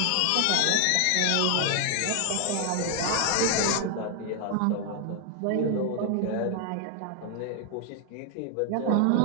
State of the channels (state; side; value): different; both; correlation 0.00